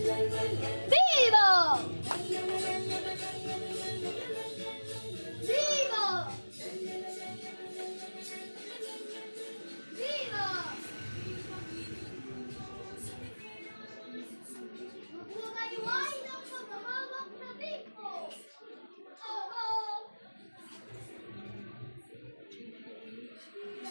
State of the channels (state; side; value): inverted; both; correlation -1.00